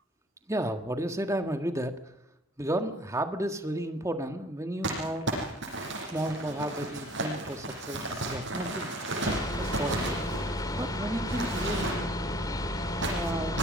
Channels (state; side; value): normal; both; correlation 0.53